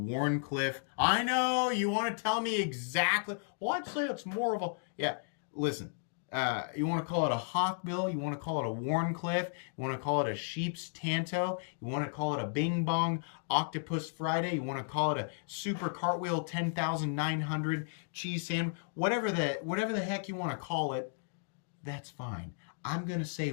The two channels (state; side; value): silent; right; digital silence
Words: I know, you want to tell me exactly. Well, I'd say it's more of a, yeah, listen. You want to call it a Hawkbill, you want to call it a Wharncliffe, you want to call it a Sheep's Tanto, you want to call it a Bing Bong Octopus Friday, you want to call it a Super Cartwheel 10,900 cheese sandwich, whatever the heck you want to call it, that's fine. I'm going to say